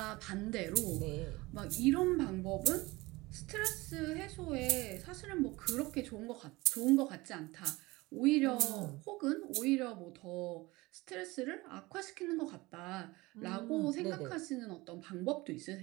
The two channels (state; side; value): quieter; left; 21.7 dB